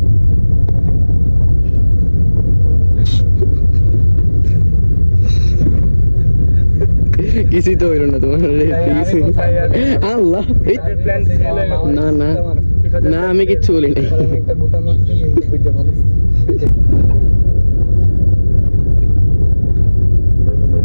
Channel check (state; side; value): inverted; both; correlation -1.00